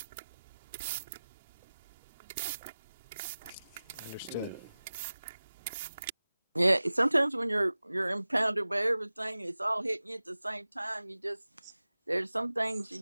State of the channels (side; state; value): both; inverted; correlation -0.96